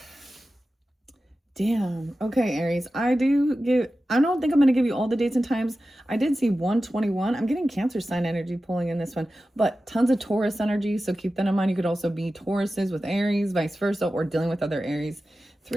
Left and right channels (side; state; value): both; normal; correlation 0.94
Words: Damn. Okay, Aries. I don't think I'm going to give you all the dates and times. I did see 121. I'm getting Cancer sign energy pulling in this one, but tons of Taurus energy. So keep that in mind. You could also be Tauruses with Aries, vice versa, or dealing with other Aries.